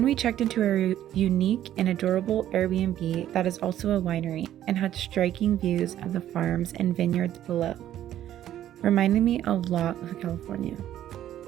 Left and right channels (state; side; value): quieter; left; 11.9 dB